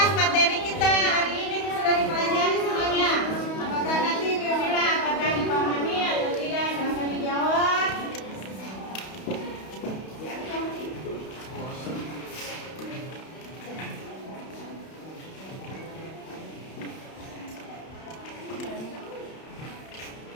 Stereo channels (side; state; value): right; late; 31 ms